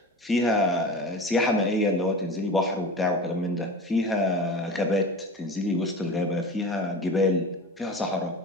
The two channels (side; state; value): both; normal; correlation 0.32